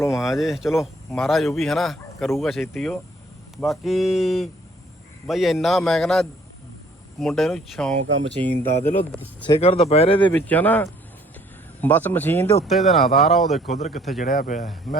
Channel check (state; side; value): normal; both; correlation 0.59